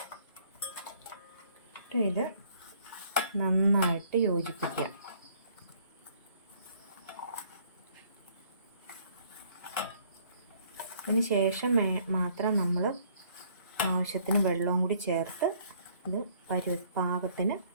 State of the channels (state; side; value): inverted; both; correlation -0.62